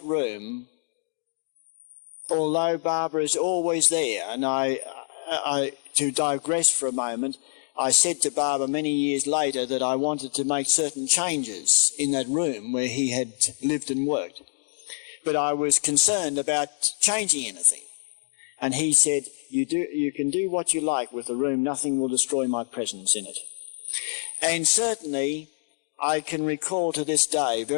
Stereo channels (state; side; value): silent; right; digital silence